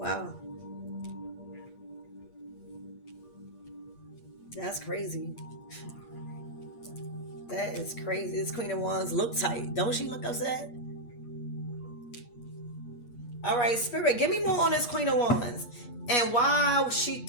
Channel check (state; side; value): late; right; 8.3 ms